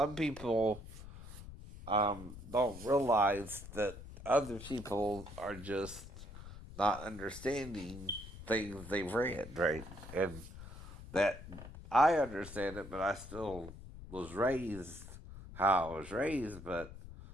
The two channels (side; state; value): left; noise; rumble, 14 dB below the sound